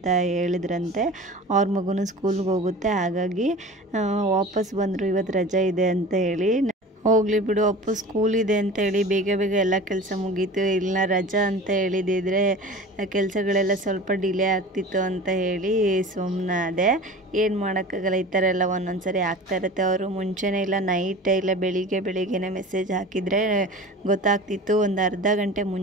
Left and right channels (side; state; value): both; normal; correlation 0.37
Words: ಹೇಳಿದ್ರಂತೆ. ಅವ್ರ ಮಗುನೂ ಸ್ಕೂಲ್ಗೆ ಹೋಗುತ್ತೆ, ಹಾಗಾಗಿ ವಾಪಸ್ ಬಂದರು ಇವತ್ತು ರಜೆ ಇದೆ ಅಂತ ಹೇಳಿ. ಹೋಗಲಿ ಬಿಡು, ಅಪ್ಪು ಸ್ಕೂಲ್ ಇದೆ ಅಂತೇಳಿ ಬೇಗ ಎಲ್ಲ ಕೆಲಸ ಮುಗೀತು. ಇಲ್ಲ ರಜಾ ಅಂತ ಹೇಳಿದಿದ್ರೆ ಕೆಲಸಗಳೆಲ್ಲ ಸ್ವಲ್ಪ ಡಿಲೇ ಆಗ್ತಿತ್ತು ಅಂತ ಹೇಳಿ ಸುಮ್ಮನಾದೆ. ಏನು ಮಾಡೋಕ್ಕಾಗಲ್ಲ, ಈ ಥರ ಎಲ್ಲ ಒಂದೊಂದು ಸರಿ ಆಗ್ತಾ ಇರುತ್ತೆ. ಅವರು ಮುಂಚೆನೇ ಇಲ್ಲ ನೈಟೇ ಇಲ್ಲ ಬೆಳಿಗ್ಗೆನೇ ಮೆಸೇಜ್ ಹಾಕಿದರೆ ಗೊತ್ತಾಗ್ತಿತ್ತು. ಒಂದು ಅರ್ಧ ಗಂಟೆ